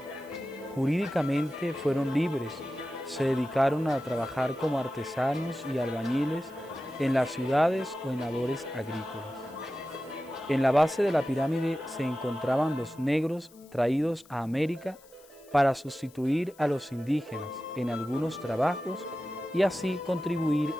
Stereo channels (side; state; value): left; noise; hiss, 26 dB below the sound